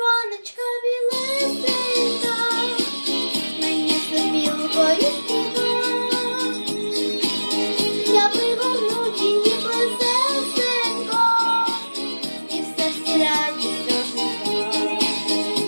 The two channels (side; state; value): both; inverted; correlation -1.00